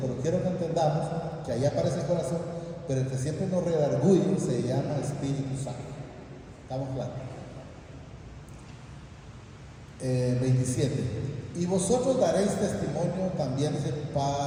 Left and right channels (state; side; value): identical; both; correlation 1.00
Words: quiero que entendamos que ahí aparece el corazón, pero el que siempre nos redarguye se llama Espíritu Santo. ¿Estamos claros? 27. Y vosotros daréis testimonio también, dice,